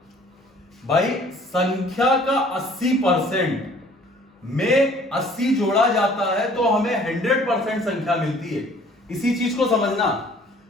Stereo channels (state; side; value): normal; both; correlation 0.55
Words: भाई संख्या का 80% में 80 जोड़ा जाता है तो हमें 100% संख्या मिलती है। इसी चीज को समझना,